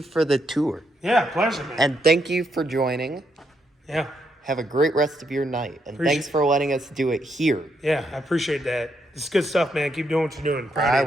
for the tour. Yeah, pleasure, man. And thank you for joining. Yeah. Have a great rest of your night. And thanks for letting us do it here. Yeah, I appreciate that. It's good stuff, man. Keep doing what you're doing. Proud of I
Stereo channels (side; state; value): both; normal; correlation 0.78